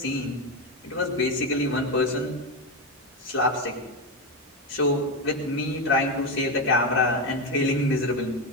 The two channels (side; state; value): both; normal; correlation 0.12